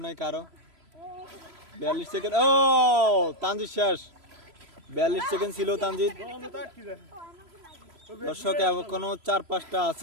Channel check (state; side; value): late; left; 3.0 ms